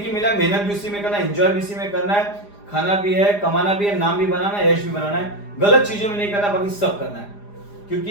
ही मिला, मेहनत भी उसी में करना है, एंजॉय भी इसी में करना है, खाना भी है, कमाना भी है, नाम भी बनाना है, यश भी बनाना है। गलत चीज़ों में नहीं करना, बाकी सब करना है।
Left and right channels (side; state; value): right; late; 4.9 ms